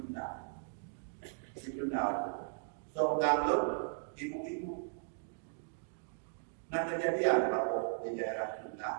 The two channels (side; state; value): left; silent; digital silence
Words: Seorang ibu-ibu. Nah kejadian kalau di daerah Junda,